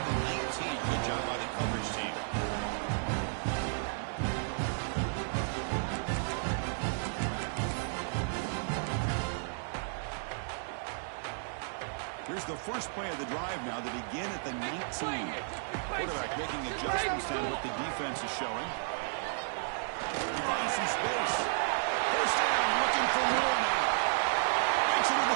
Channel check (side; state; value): left; silent; digital silence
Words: the 19. Good job by the coverage team. Here's the first play of the drive now. They begin at the 19. Quarterback making adjustments down what the defense is showing. He finds some space. 1st down, looking for more now. Makes it in